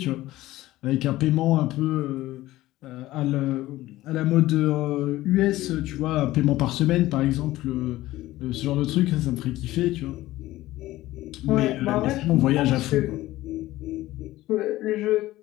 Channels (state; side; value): quieter; right; 16.6 dB